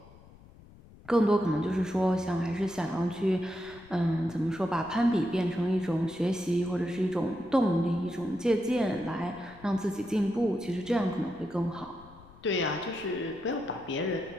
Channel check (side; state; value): left; noise; rumble, 22 dB below the sound